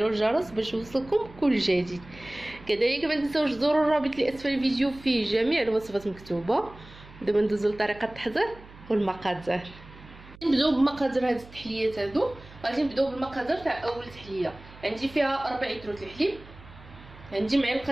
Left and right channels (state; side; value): noise; right; hum, 20 dB below the sound